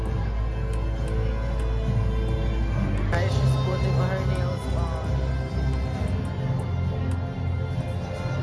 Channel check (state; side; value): identical; both; correlation 1.00